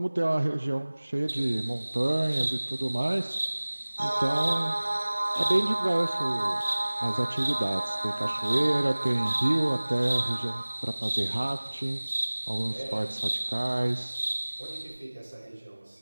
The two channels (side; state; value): both; inverted; correlation -1.00